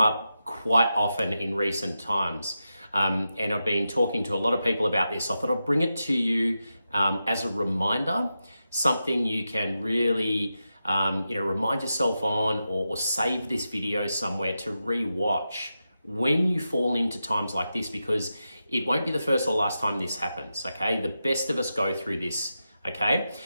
quite often in recent times. And I've been talking to a lot of people about this. So I thought I'll bring it to you as a reminder, something you can really remind yourself on or save this video somewhere to re-watch when you fall into times like this, because it won't be the first or last time this happens, okay? The best of us go through this, okay?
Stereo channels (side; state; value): both; inverted; correlation -0.89